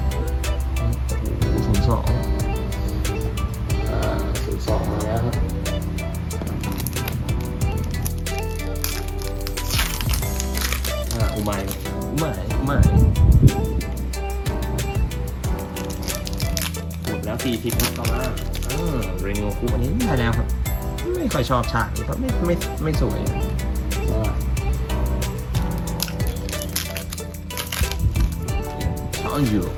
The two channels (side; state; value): both; identical; correlation 1.00